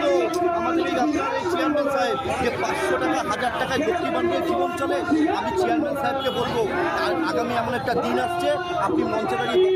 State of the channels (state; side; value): identical; both; correlation 1.00